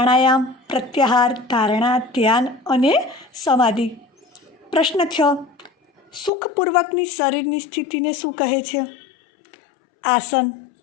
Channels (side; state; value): right; drops out; at 6.3 s